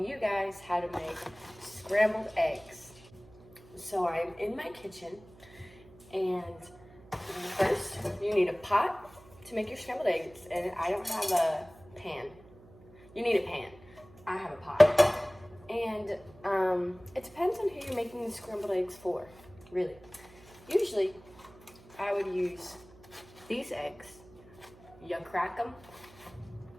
you guys how to make scrambled eggs. So I'm in my kitchen, and first you need a pot to make your scrambled eggs, and I don't have a pan. You need a pan. I have a pot. And it depends on who you're making the scrambled eggs for, really. Usually, I would use these eggs. You crack them.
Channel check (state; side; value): noise; right; hum, 23 dB below the sound